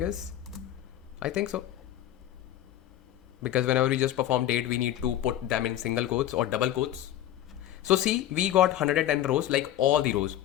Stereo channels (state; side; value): quieter; right; 12.4 dB